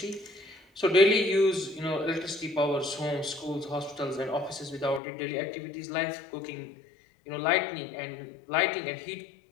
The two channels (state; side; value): drops out; right; at 5.0 s